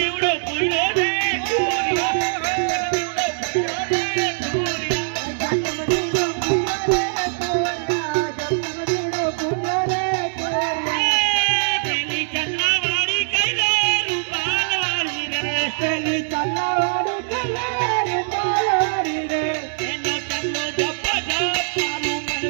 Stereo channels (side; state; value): left; silent; digital silence